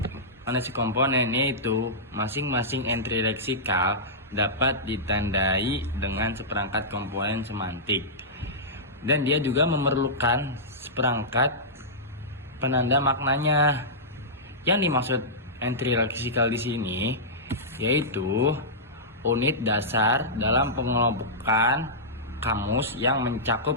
analisis komponen yaitu masing-masing entry leksikal dapat ditandai dengan seperangkat komponen semantik, dan dia juga memerlukan seperangkat penanda maknanya. Yang dimaksud entry leksikal di sini yaitu unit dasar dalam pengelompokan kamus yang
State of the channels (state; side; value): normal; both; correlation -0.14